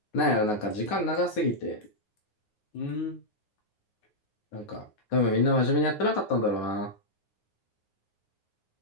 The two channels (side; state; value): right; late; 9.6 ms